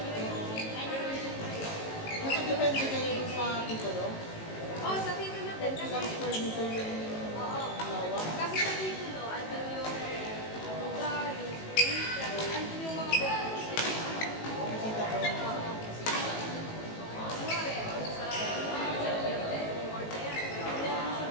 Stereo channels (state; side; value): late; right; 18 ms